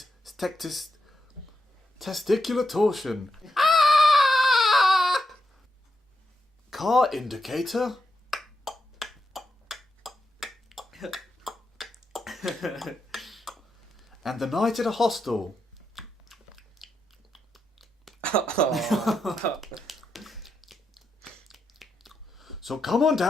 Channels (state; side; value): normal; both; correlation 0.85